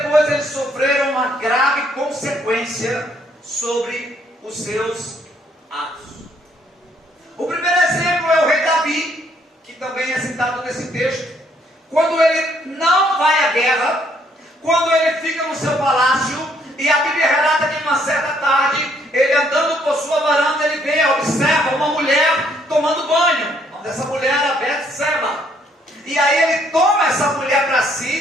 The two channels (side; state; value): both; normal; correlation 0.68